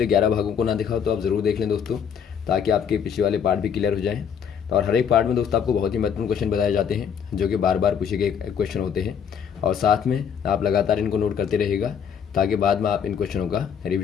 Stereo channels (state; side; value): quieter; right; 7.7 dB